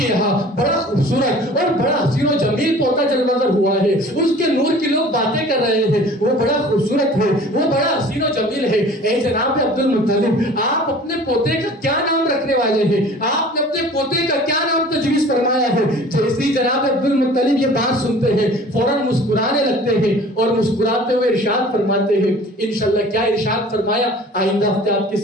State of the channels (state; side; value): normal; both; correlation 0.46